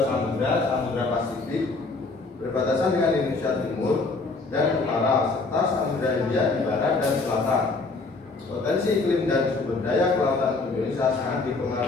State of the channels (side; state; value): right; quieter; 3.8 dB